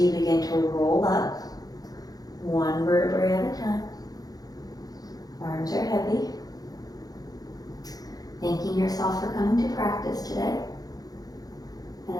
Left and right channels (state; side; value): late; right; 0.18 ms